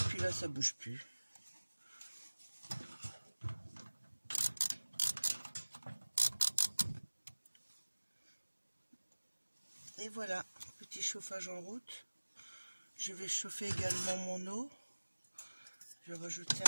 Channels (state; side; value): inverted; both; correlation -1.00